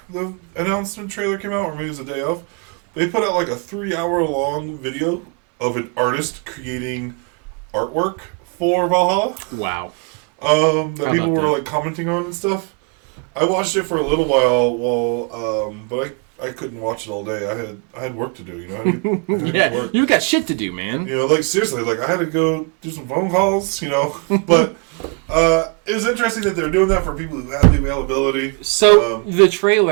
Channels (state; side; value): quieter; left; 35.8 dB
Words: the announcement trailer came out, or maybe it was the day of, they put out like a 3-hour-long video of an artist creating artwork for Valhalla. Wow. That people were like commenting on and stuff. I watched it for a little while, but I couldn't watch it all day. I had work to do, you know. I had to get to work. You got shit to do, man. You know, like seriously, like I had to go do some phone calls, you know. But it was interesting that they're doing that for people who have the availability. So the